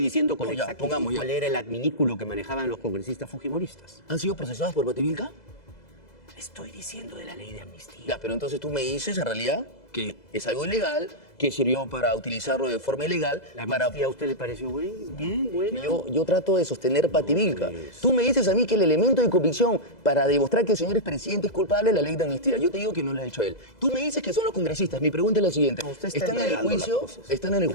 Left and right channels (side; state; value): right; late; 2.0 ms